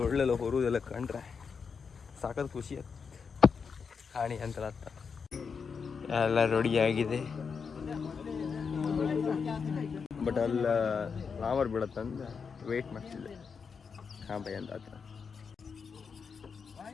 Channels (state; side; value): quieter; right; 5.8 dB